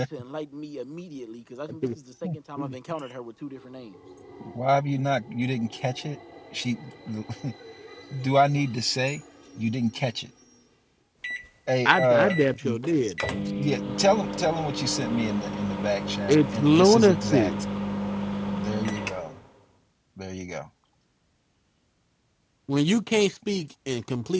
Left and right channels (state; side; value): identical; both; correlation 1.00